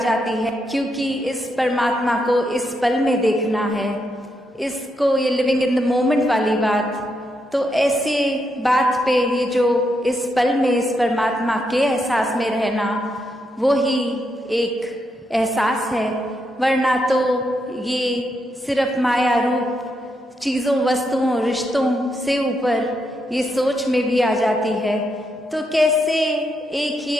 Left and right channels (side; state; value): both; normal; correlation 0.81